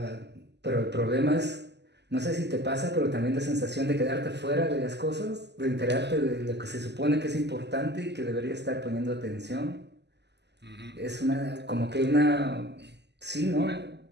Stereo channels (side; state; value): left; late; 0.50 ms